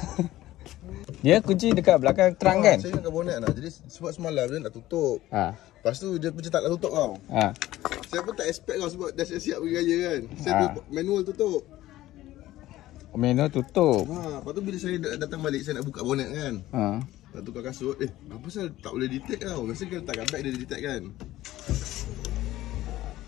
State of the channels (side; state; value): right; quieter; 15.5 dB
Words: Dia kunci dekat belakang terang kan? Saya ingatkan bonet nak. Jadi sebab semalam dia nak tutup. Lepas tu dia macam tak nak tutup tau. Saya pun tak expect tau sebab dah siap-siap pergi raya kan. Saya tu manual tutup. Manual tutup. Lepas tu bila saya datang balik saya nak buka bonet kan. Nak tukar kasut. Apa pasal tak boleh detect tau. Biasa kalau letakkan bag dia detect kan.